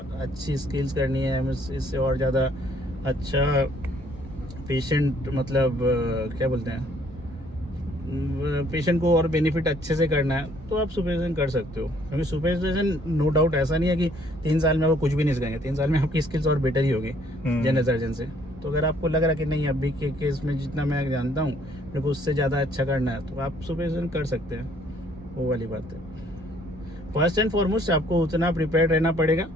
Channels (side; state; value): both; normal; correlation 0.63